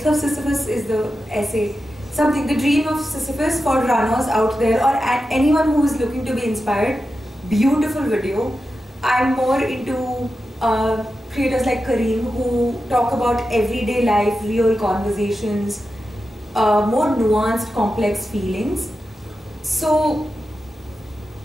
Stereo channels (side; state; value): both; normal; correlation 0.91